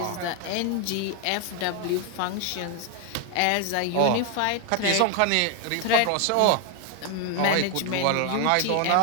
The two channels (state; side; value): different; both; correlation 0.01